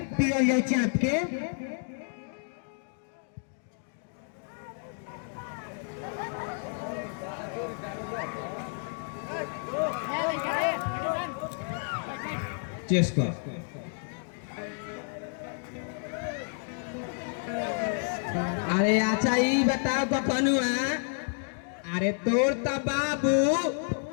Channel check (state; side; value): silent; right; 58 dB below the other